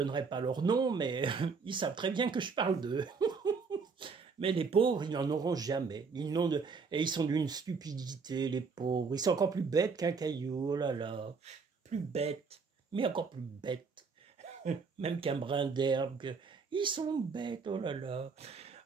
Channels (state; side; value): quieter; left; 5.1 dB